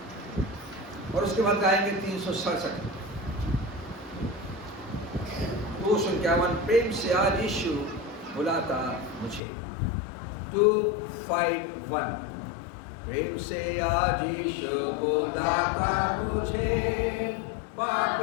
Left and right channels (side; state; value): right; drops out; at 9.4 s